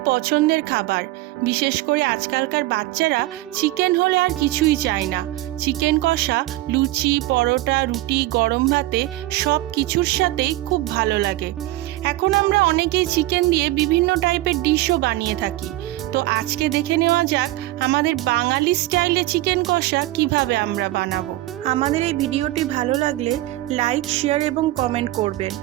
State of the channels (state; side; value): quieter; left; 17.3 dB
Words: পছন্দের খাবার। বিশেষ করে আজকালকার বাচ্চারা চিকেন হলে আর কিছুই চায় না। চিকেন কষা লুচি, পরোটা, রুটি, গরম ভাতে সব কিছুর সাথেই খুব ভালো লাগে। এখন আমরা অনেকেই চিকেন দিয়ে বিভিন্ন টাইপের ডিশও বানিয়ে থাকি। তো আজকে দেখে নেওয়া যাক আমাদের বাঙালি স্টাইলে চিকেন কষা কিভাবে আমরা বানাবো। আমাদের এই ভিডিওটি ভালো লাগলে লাইক, শেয়ার এবং কমেন্ট করবেন,